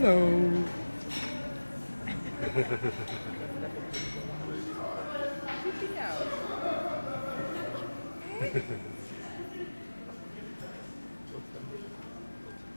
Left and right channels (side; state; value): both; inverted; correlation -1.00